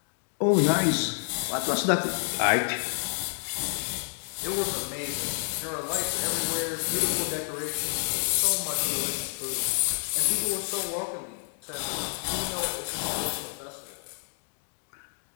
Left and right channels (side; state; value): right; silent; digital silence